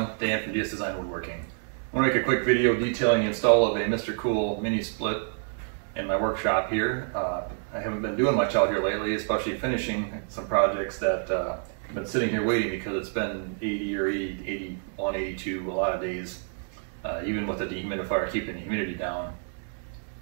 Dan from DS Design Woodworking. I want to make a quick video detailing the install of a Mr. Cool mini split in my workshop here. I haven't been doing much out here lately, especially finishing some projects that have been sitting here waiting because it's been 80 or 80, 81, 82 a lot of days, even with the dehumidifier keeping the humidity down.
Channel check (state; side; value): silent; left; 59 dB below the other